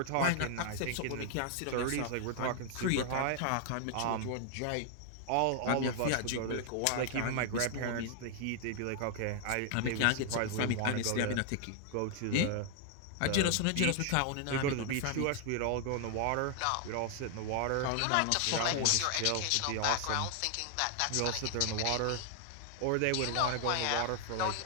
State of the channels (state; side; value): different; both; correlation 0.00